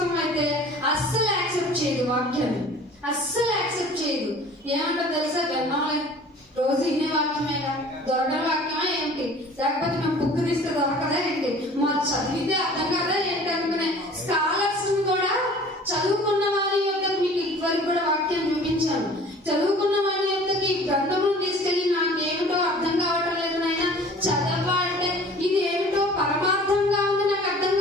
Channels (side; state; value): both; normal; correlation 0.47